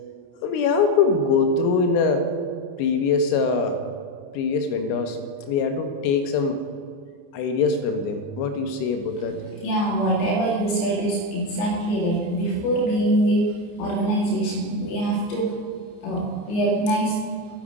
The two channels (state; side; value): late; right; 29 ms